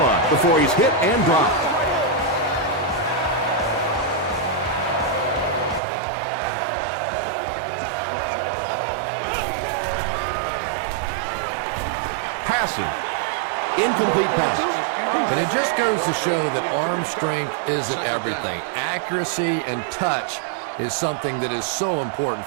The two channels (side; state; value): left; drops out; at 5.8 s